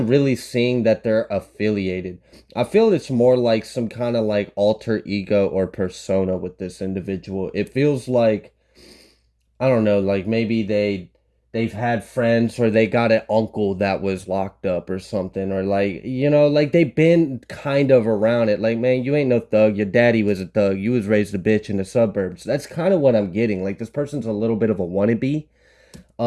really seeing that they're affiliated. I feel it's more like some kind of like alter ego or persona with this individual. It feels like, I don't know, like maybe they've had friends, or they got an uncle that was locked up or something, or like, like they've been kind of around it. Like, man, you ain't no thug. Your daddy was a thug. You was raised a bitch in the suburbs. That's kind of what I'm getting. Like this person's a little bit of a wannabe.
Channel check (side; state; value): both; identical; correlation 1.00